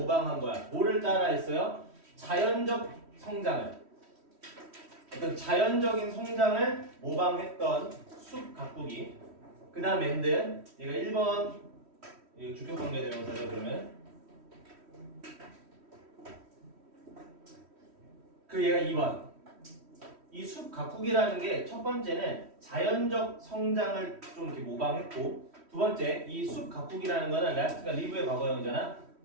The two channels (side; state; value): left; late; 3.1 ms